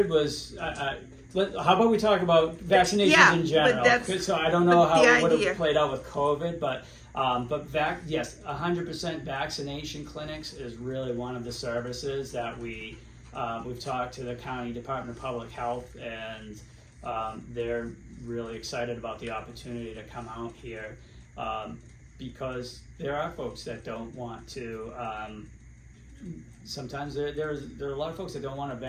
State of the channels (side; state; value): both; identical; correlation 1.00